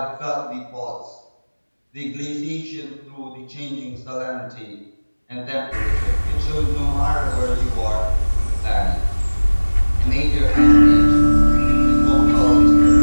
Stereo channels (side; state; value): both; inverted; correlation -1.00